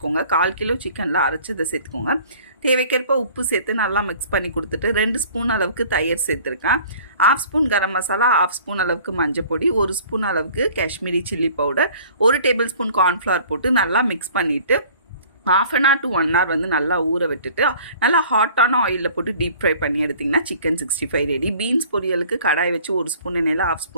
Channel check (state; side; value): inverted; both; correlation -0.50